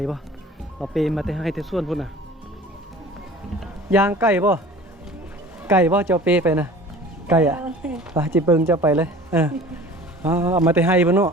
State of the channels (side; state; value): both; normal; correlation 0.43